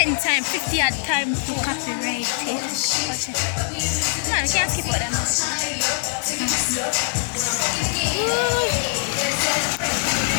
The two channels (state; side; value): silent; right; digital silence